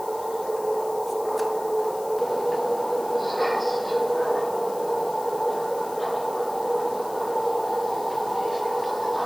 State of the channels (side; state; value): left; noise; hiss, 17 dB below the sound